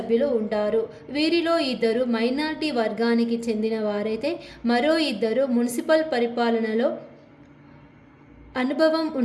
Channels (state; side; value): identical; both; correlation 1.00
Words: ఉంటారు. వీరిలో 2 మైనారిటీ వర్గానికి చెందిన వారైతే మరో 2 మున్సిపల్ పరిపాలనలో అనుభవం